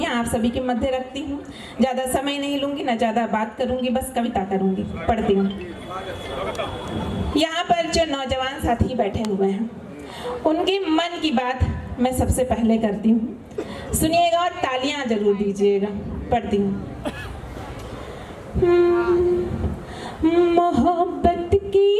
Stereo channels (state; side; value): identical; both; correlation 1.00